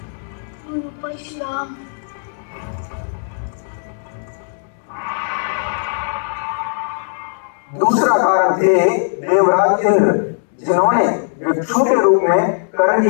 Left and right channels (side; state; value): right; silent; digital silence